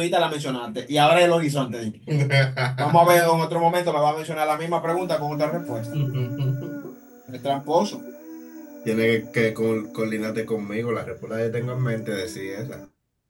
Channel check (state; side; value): identical; both; correlation 1.00